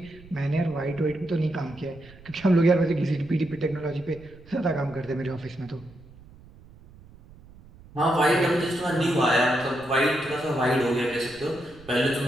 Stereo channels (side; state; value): right; noise; rumble, 22 dB below the sound